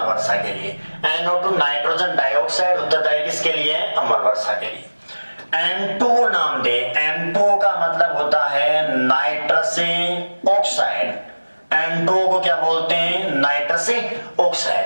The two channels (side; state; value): both; inverted; correlation -1.00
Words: वर्षा के लिए। NO2 नाइट्रोजन डाइऑक्साइड उत्तरदायी किसके लिए, अम्ल वर्षा के लिए। N2O नाम दे, N2O का मतलब होता है नाइट्रस ऑक्साइड। N2O को क्या बोलते हैं, नाइट्रस